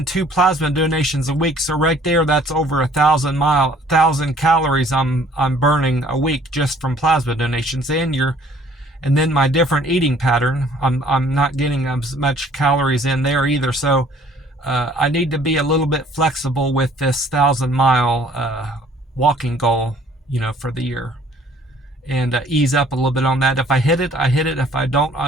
2 plasma donations a week. So right there, that's over 1,000 calories I'm burning a week just from plasma donations. And then my different eating pattern, I'm not getting as much calories in there either. So I need to be a little bit flexible with this 1,000-mile walking goal, for the year. And ease up a little bit on that. If I hit it, I hit it. If I don't, I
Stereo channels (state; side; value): normal; both; correlation 0.57